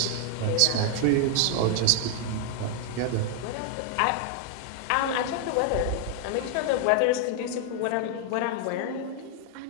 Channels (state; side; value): different; both; correlation 0.00